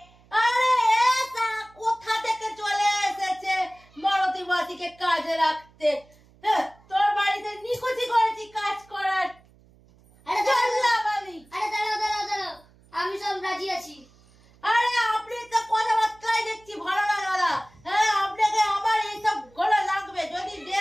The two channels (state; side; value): noise; right; hum, 29 dB below the sound